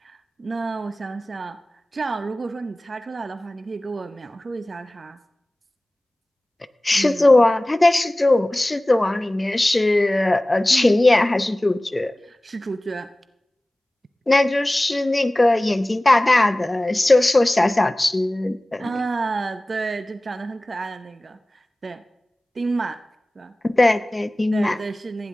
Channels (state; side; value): normal; both; correlation 0.98